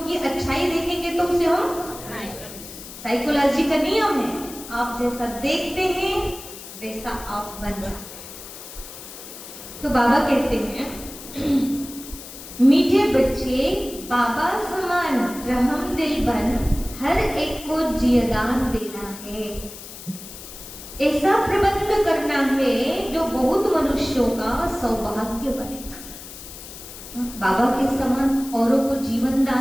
अच्छाई देखेंगे तो उसे हम, साइकोलॉजी का नियम है, आप जैसा देखते हैं वैसा आप बन जाते हैं। तो बाबा कहते हैं मीठे बच्चे बाबा समान रहम दिल बन, हर एक को जियदान देना है। ऐसा प्रबंध करना है जो बहुत मनुष्यों का सौभाग्य बने। बाबा के समान औरों को जीवन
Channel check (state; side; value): noise; left; hiss, 14 dB below the sound